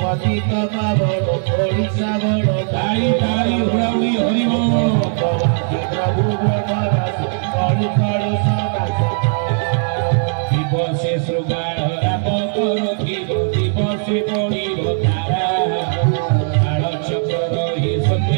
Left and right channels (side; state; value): left; silent; digital silence